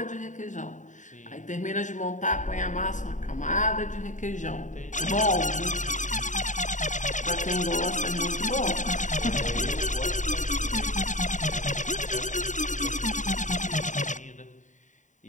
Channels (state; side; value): late; right; 0.36 ms